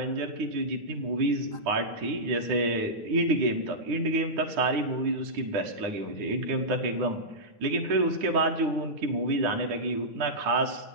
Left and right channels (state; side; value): late; left; 9.8 ms